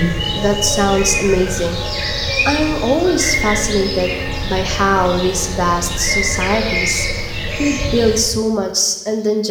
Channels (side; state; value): both; identical; correlation 1.00